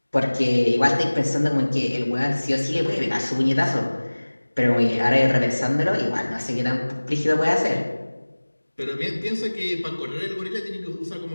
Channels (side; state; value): both; inverted; correlation -1.00